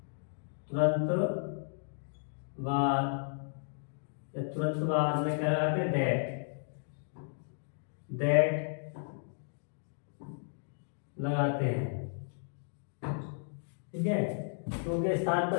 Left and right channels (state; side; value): silent; right; digital silence